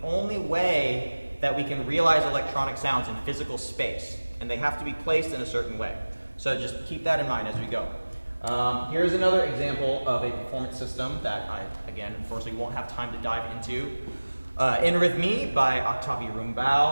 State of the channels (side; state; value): both; inverted; correlation -1.00